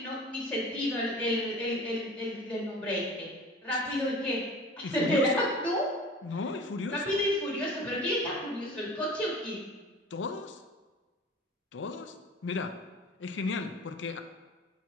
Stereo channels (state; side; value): normal; both; correlation 0.41